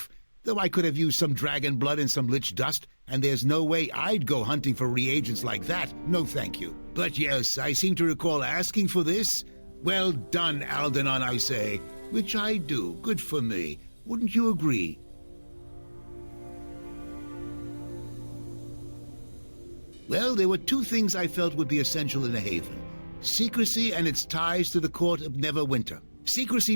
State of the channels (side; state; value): both; inverted; correlation -1.00